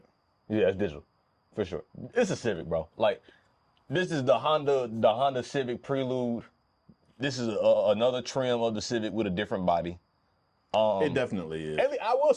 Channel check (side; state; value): both; identical; correlation 1.00